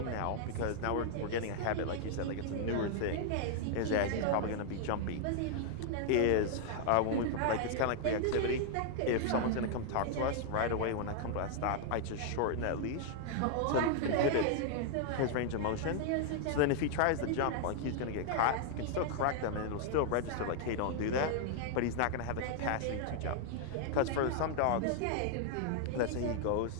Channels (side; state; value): both; different; correlation 0.00